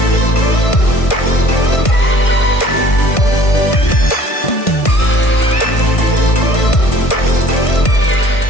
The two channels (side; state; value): right; late; 1.5 ms